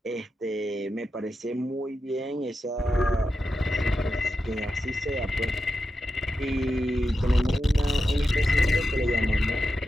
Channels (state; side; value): normal; both; correlation 0.89